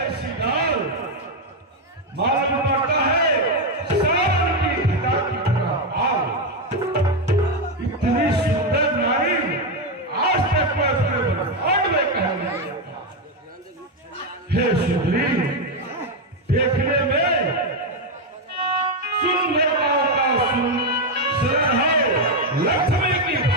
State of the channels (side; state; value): both; normal; correlation 0.06